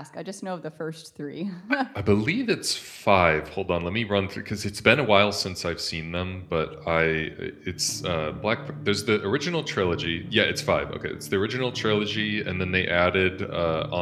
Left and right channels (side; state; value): both; identical; correlation 1.00